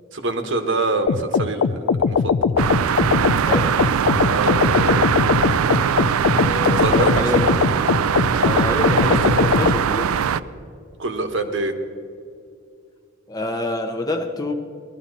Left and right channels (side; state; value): both; normal; correlation 0.13